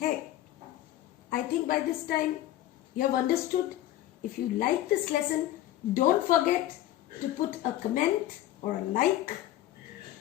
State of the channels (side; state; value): right; quieter; 13.9 dB